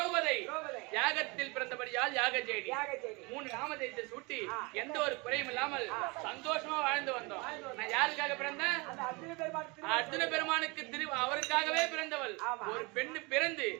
யாகத்தில் பிறந்தபடியால் யாகஜேடி. 3 நாமதேயத்தை சூட்டி எந்த ஒரு குறையும் இல்லாமல் சந்தோஷமா வாழ்ந்து வந்தோம். நான் யாருக்காக பிறந்தேன்? அர்ஜுன பெருமானுக்கு அவருக்காகவே பிறந்தவள். ஒரு பெண்ணு பிறந்து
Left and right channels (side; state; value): left; quieter; 27.3 dB